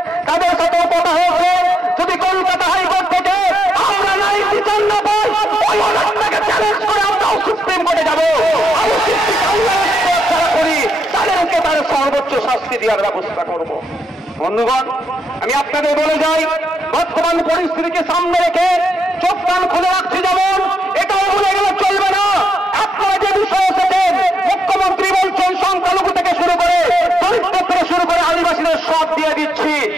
তাদের সাথেও কথা হয়েছে, যদি কলকাতা হাইকোর্ট থেকে আমরা নাই বিচার না পাই, ওই অর্ডারটাকে চ্যালেঞ্জ করে আমরাও সুপ্রিম কোর্টে যাব। আবু সিদ্দিক আল্লাহের ছাড়া করি তাদেরকে তার সর্বোচ্চ শাস্তি দেওয়ার ব্যবস্থা করব। বন্ধুগণ, আমি আপনাদের বলে যাই, বর্তমান পরিস্থিতিকে সামনে রেখে চোখ কান খুলে রাখছি, যেমন এটাও ভুলে গেলে চলবে না। আপনারা যে বিষয় এসেছেন, মুখ্যমন্ত্রী বলছেন সংখ্যালঘু থেকে শুরু করে দরিদ্র থেকে শুরু করে আদিবাসীদের সব দিয়ে দিচ্ছি,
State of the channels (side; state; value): both; normal; correlation 0.79